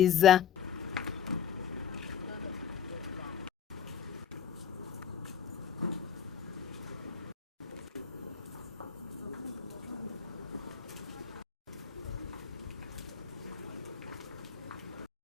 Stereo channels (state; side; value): quieter; right; 8.2 dB